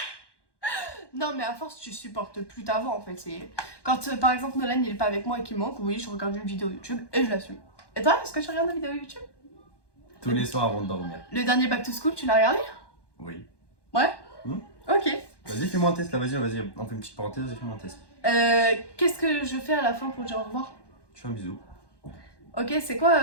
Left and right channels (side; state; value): right; late; 1.1 ms